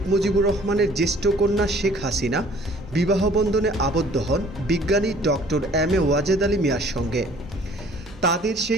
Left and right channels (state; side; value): normal; both; correlation 0.54